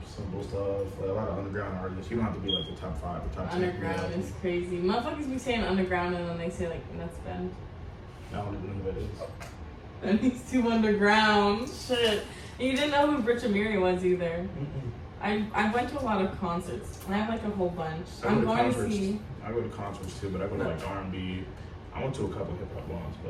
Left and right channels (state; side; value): identical; both; correlation 1.00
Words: simple stuff, like a lot of underground artists. You don't have to be like the top 5 or top 10. Underground is crazy. Motherfuckers be saying underground and then they say like nuts bend. I don't even know who that is. And he's too underground. Shit. And you didn't know who Rich Amiri was either. I went to a lot of concerts. I have like a whole bunch. I go I'm to going to concerts. see. I go to concerts too, but I go to like R&B. I went to a couple hip hop ones,